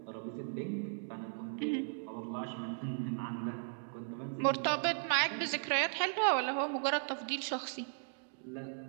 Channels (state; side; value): silent; left; digital silence